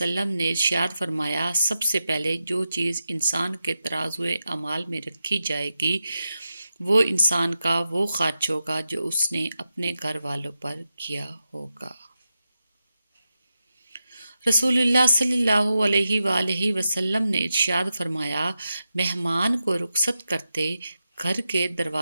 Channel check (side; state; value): both; inverted; correlation -0.90